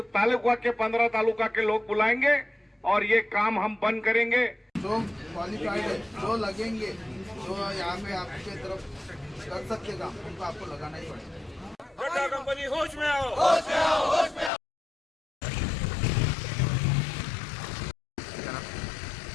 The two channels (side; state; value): right; drops out; at 14.5 s